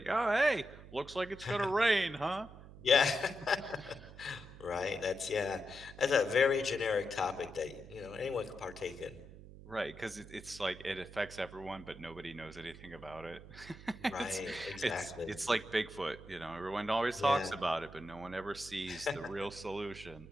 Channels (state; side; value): noise; right; hum, 16 dB below the sound